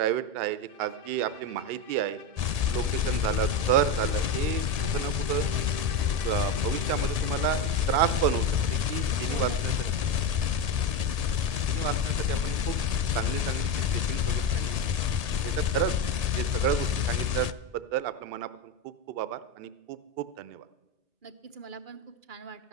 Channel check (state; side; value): late; left; 1.8 ms